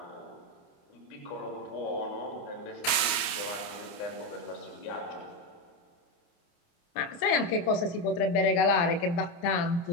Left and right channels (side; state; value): right; late; 29 ms